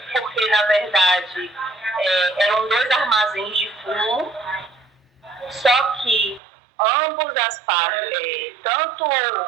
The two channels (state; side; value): drops out; left; at 6.4 s